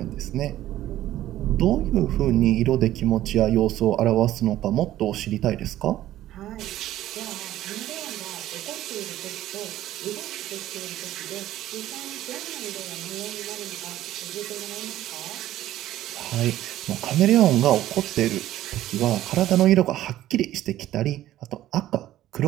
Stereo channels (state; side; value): quieter; left; 13.8 dB